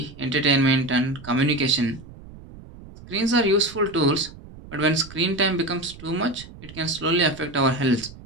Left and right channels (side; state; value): right; noise; rumble, 18 dB below the sound